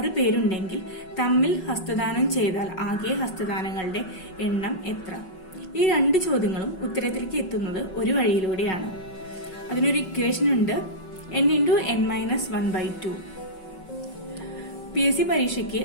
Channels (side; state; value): right; late; 5.4 ms